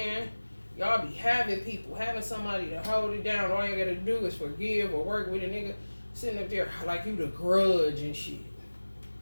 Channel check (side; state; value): both; inverted; correlation -1.00